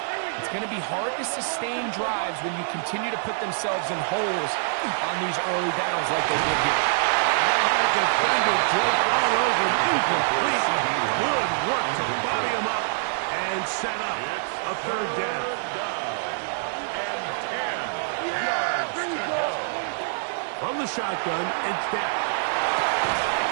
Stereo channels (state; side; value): silent; left; 57 dB below the other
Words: It's going to be hard to sustain drives when you continue to put themselves in holes on these early downs like they did here. I had a defender draped all over him. Incomplete. Good work to body him up and set up a third down. And 10 yards to go. From the shotgun, it's Dak.